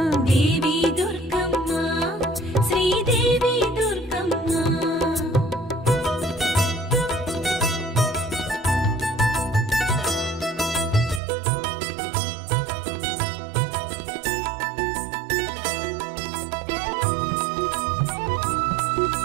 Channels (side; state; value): left; drops out; at 11.2 s